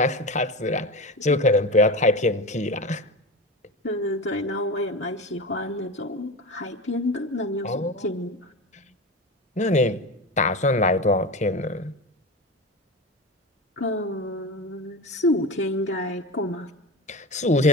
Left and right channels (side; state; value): both; normal; correlation 0.25